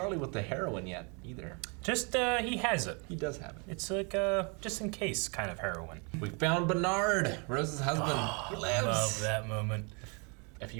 with the heroin yet, either. Just, he has it. He does have it. It's like, just in case kind of heroin. We found Bernard, Rose's husband. He lives. Love that moment. A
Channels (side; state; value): left; quieter; 34.1 dB